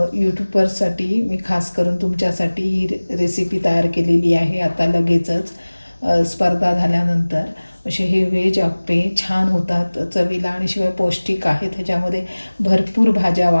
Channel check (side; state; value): both; inverted; correlation -1.00